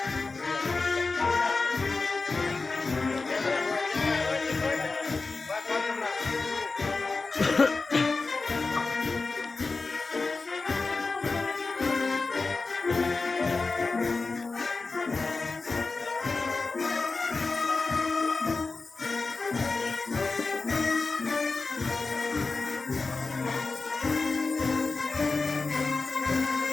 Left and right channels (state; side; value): quieter; right; 3.9 dB